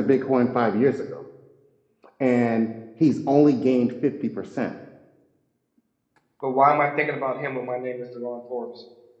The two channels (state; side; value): identical; both; correlation 1.00